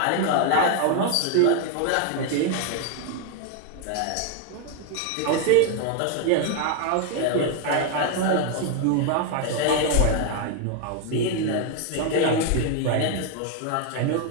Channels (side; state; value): both; different; correlation 0.00